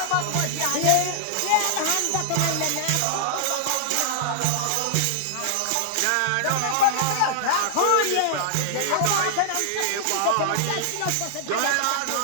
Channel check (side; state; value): both; different; correlation -0.01